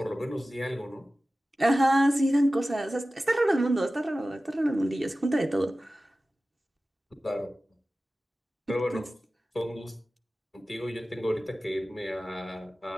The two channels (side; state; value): both; normal; correlation 0.96